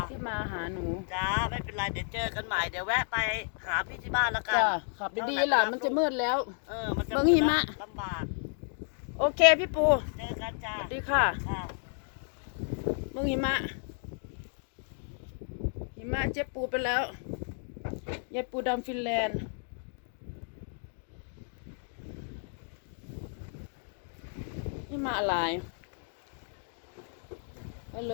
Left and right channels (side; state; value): right; silent; 56 dB below the other